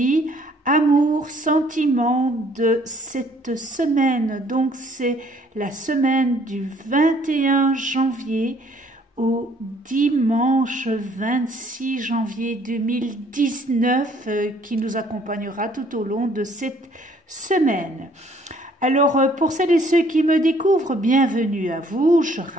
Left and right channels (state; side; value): normal; both; correlation 0.61